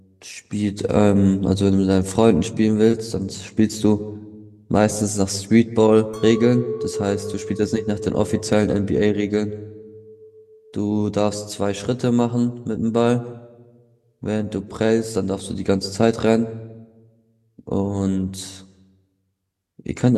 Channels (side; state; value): both; identical; correlation 1.00